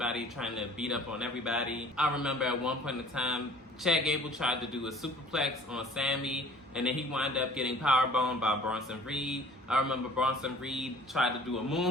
trying to beat up on everybody. I remember at one point in time, Chad Gable tried to do a superplex on Sami, and then he wound up getting powerbombed by Bronson Reed. I remember Bronson Reed tried to do a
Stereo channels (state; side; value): normal; both; correlation 0.50